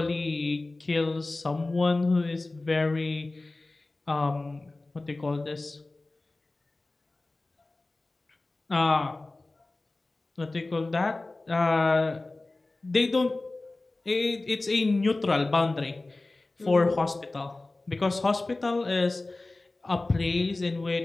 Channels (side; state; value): right; quieter; 3.1 dB